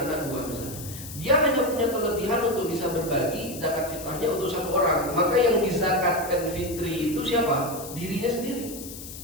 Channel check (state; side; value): noise; left; hiss, 12 dB below the sound